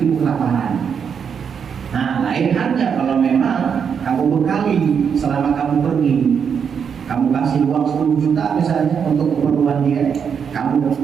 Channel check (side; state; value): left; quieter; 7.0 dB